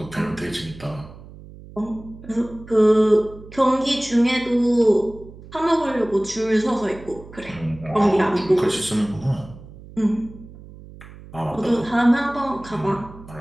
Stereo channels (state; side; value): noise; right; hum, 18 dB below the sound